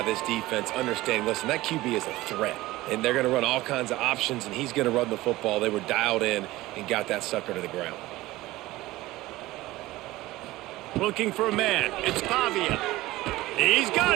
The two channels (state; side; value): quieter; left; 18.0 dB